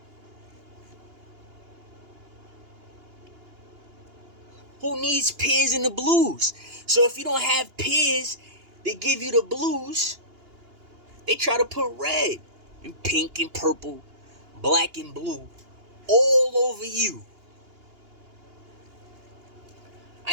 Who needs peers in the blues? So if you don't have peers that give you the blues, they try to put red and pink and purple, black and blue all over you.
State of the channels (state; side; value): late; left; 2.8 ms